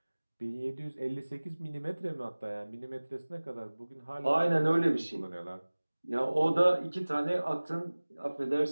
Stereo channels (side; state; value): both; inverted; correlation -1.00